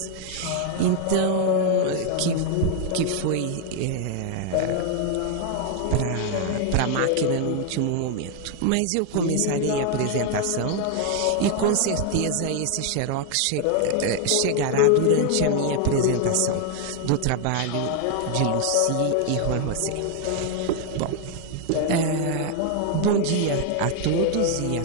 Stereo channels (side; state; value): both; different; correlation 0.00